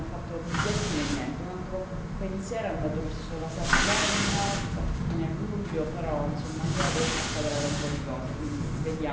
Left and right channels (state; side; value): identical; both; correlation 1.00